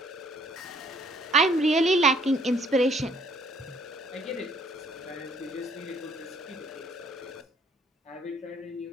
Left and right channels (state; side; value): normal; both; correlation 0.62